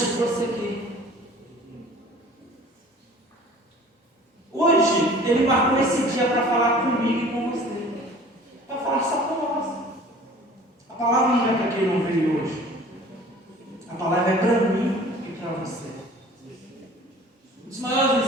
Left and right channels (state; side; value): normal; both; correlation 0.47